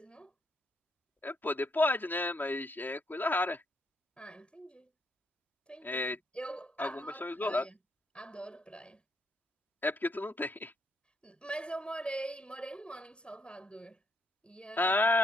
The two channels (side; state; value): both; normal; correlation 0.74